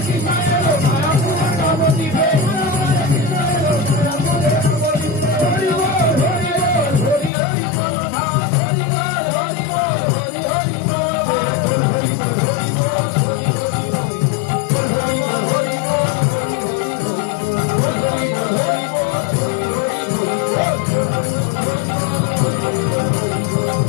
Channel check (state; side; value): drops out; right; at 7.3 s